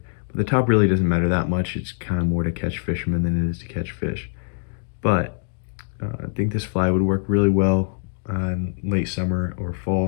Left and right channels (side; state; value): right; silent; digital silence